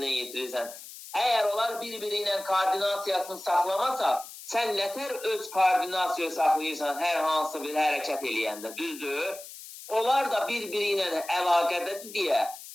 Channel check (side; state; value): left; noise; hiss, 14 dB below the sound